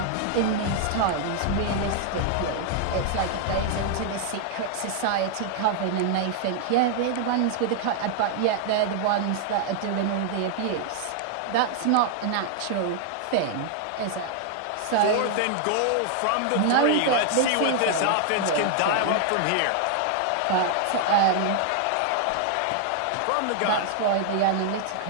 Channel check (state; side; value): different; both; correlation 0.00